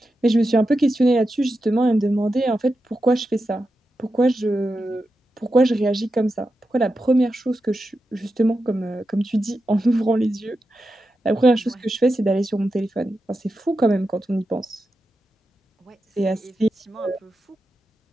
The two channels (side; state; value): both; normal; correlation 0.89